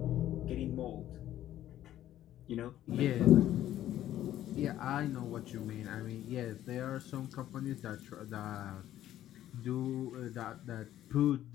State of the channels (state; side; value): quieter; right; 12.6 dB